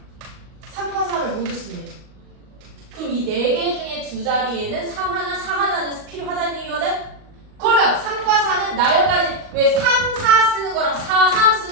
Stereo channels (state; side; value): late; left; 38 ms